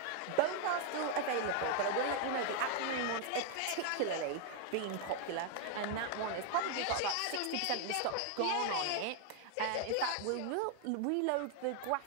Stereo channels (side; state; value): both; different; correlation 0.00